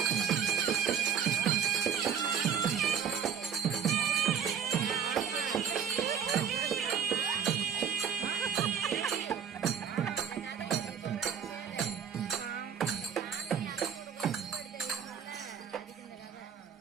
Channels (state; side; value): quieter; left; 7.9 dB